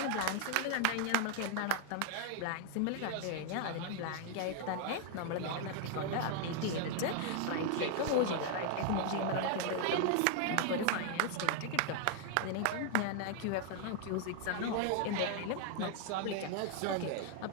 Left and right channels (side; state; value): both; different; correlation 0.00